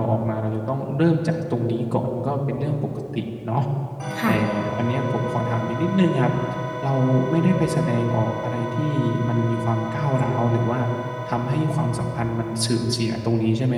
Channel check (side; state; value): both; identical; correlation 1.00